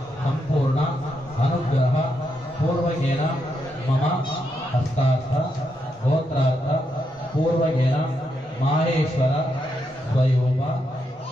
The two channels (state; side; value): normal; both; correlation 0.81